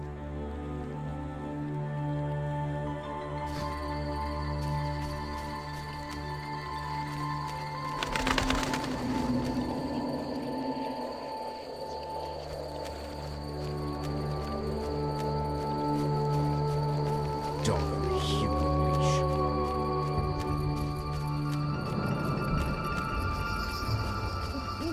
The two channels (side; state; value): both; identical; correlation 1.00